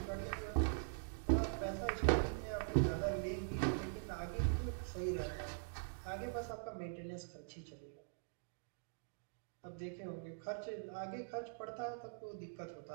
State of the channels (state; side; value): silent; left; digital silence